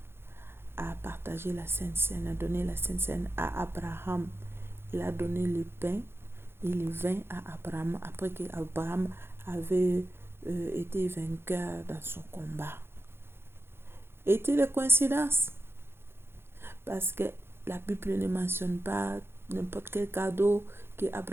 à partager la Sainte Seine, a donné la Sainte Seine à Abraham. Il a donné le pain et le vin à Abraham après qu'Abraham avait été vainqueur dans son combat. Est-il une coïncidence? Parce que la Bible ne mentionne pas n'importe quel cadeau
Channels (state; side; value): late; left; 0.11 ms